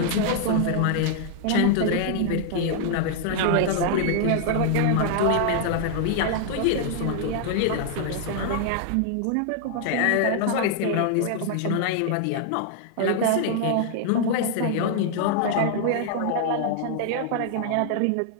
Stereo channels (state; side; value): different; both; correlation 0.00